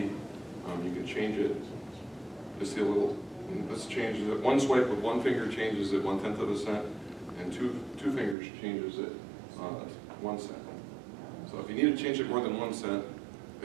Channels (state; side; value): drops out; left; at 8.3 s